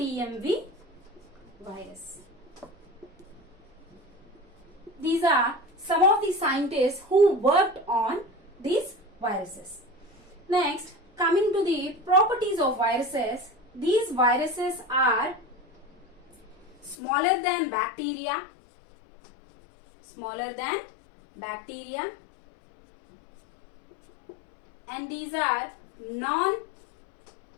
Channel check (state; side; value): drops out; right; at 16.9 s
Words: virus. These are some of the scientists who worked on these viruses. Next, coming to the properties of viruses, these viruses are smaller than bacteria, and these are